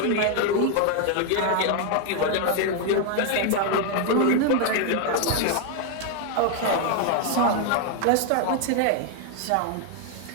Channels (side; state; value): both; different; correlation 0.00